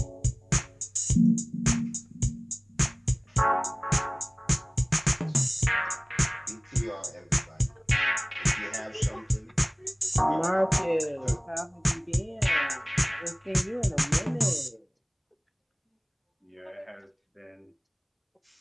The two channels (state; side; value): identical; both; correlation 1.00